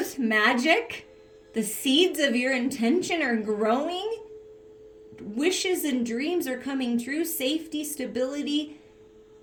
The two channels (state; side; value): identical; both; correlation 1.00